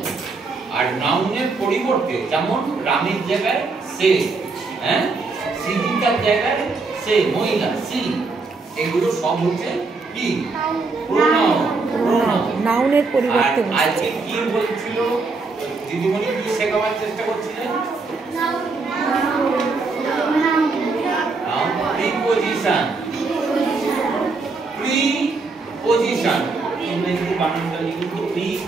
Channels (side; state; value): left; quieter; 4.0 dB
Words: আর নাউনের পরিবর্তে যেমন রামের জায়গায় সে, হ্যাঁ, সৃজিতার জায়গায় সে, মহিলা সি, এগুলো সব হচ্ছে কি? নাউনের পরিবর্তে। আজকে কি বলছিল দিদিমণি, কি শেখাবার চেষ্টা করছিলেন? প্রিপজিশন। প্রিপজিশন ইংরেজিতে বানানটা লিখুন।